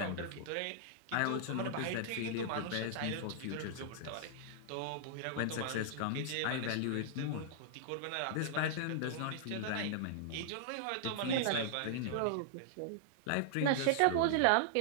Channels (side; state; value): both; different; correlation -0.01